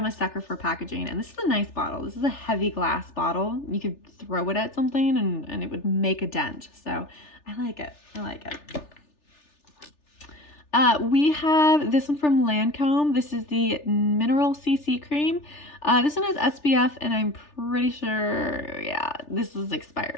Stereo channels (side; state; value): right; late; 3.4 ms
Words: a sucker for packaging, and this is a nice bottle. This is a heavy glass bottle. You could throw it at something and it would make a dent. So I like it. I like it. We have this one from Lancome. This is the Mineral CC Cream. This one has SPF, and I'm pretty sure, yeah, this is